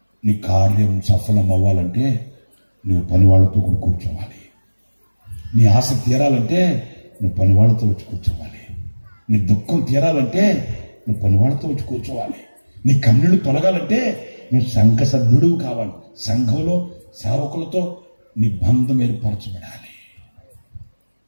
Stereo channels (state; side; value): inverted; both; correlation -1.00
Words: నీ కార్యం సఫలం అవ్వాలంటే నువ్వు పనివాళ్ళతో కూడా కూర్చోవాలి. నీ ఆశ తీరాలంటే నువ్వు పనివాళ్ళతో వచ్చి కూర్చోవాలి. నీ దుఃఖం తీరాలంటే నువ్వు పనివాళ్ళతో వచ్చి కూర్చోవాలి. నీ కన్నీళ్లు తొలగాలంటే నువ్వు సంఘ సభ్యుడు కావాలి. సంఘంలో సేవకులతో నీ బంధం ఏర్పరచబడాలి.